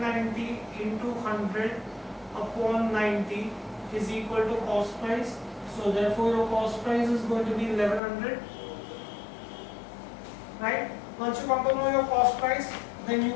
into 100 upon 90 is equal to cost price. So therefore your cost price is going to be 1100. Right? Once you come to know your cost price, then you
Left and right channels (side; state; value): right; drops out; at 8.0 s